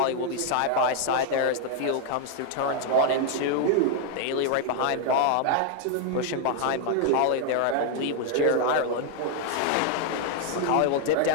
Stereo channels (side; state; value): both; different; correlation 0.00